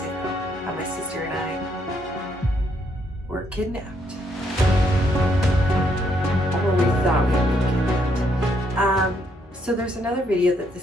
How my sister and I were kidnapped. Or we thought we were kidnapped. So there's another video that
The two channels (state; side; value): normal; both; correlation 0.73